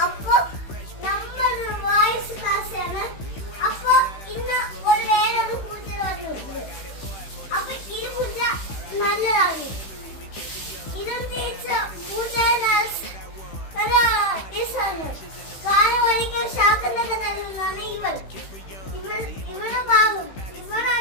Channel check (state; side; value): late; right; 16 ms